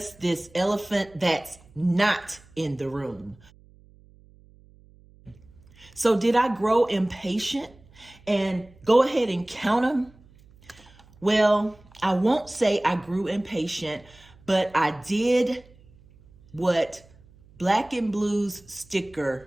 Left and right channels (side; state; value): right; noise; hum, 27 dB below the sound